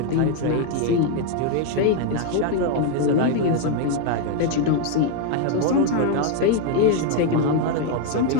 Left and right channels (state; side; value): different; both; correlation 0.01